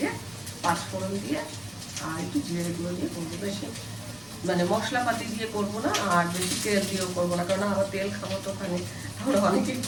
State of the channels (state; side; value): noise; right; hum, 26 dB below the sound